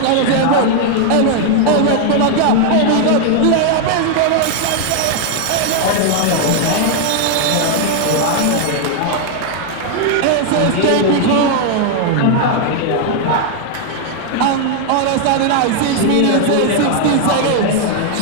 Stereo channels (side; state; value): both; different; correlation 0.00